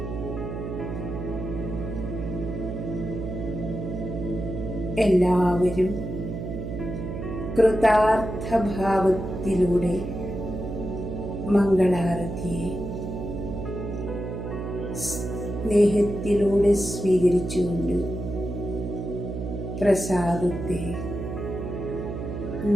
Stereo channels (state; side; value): noise; right; hum, 6 dB below the sound